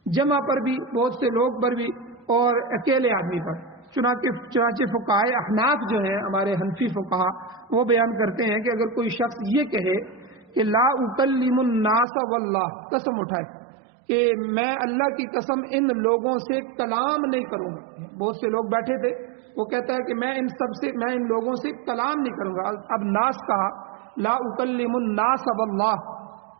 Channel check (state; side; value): drops out; left; at 12.1 s